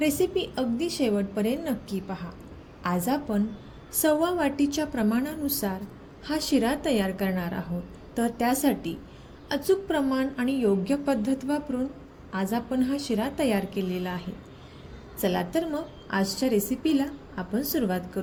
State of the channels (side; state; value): both; identical; correlation 1.00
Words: अगदी शेवटपर्यंत नक्की पहा। आज आपण 1/4 वाटीच्या प्रमाणानुसार हा शिरा तयार करणार आहोत। तर त्यासाठी अचूक प्रमाण आणि योग्य पद्धत वापरून आज आपण हा शिरा तयार केलेला आहे। चला तर मग आजच्या रेसिपीला आपण सुरुवात